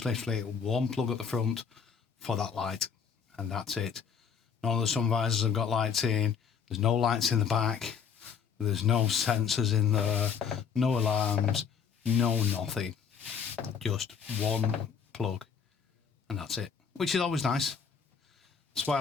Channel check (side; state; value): right; quieter; 6.7 dB